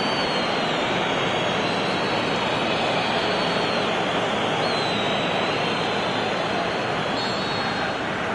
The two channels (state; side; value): identical; both; correlation 1.00